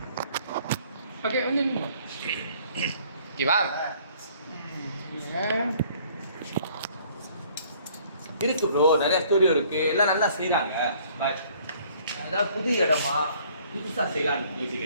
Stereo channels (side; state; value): both; inverted; correlation -0.58